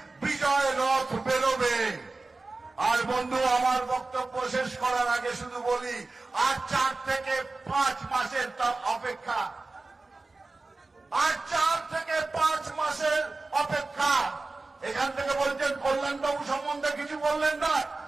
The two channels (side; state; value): left; quieter; 3.5 dB